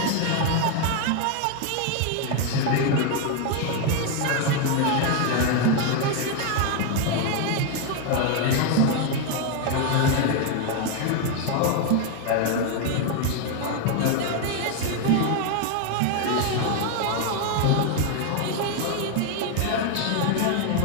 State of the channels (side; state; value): both; different; correlation 0.01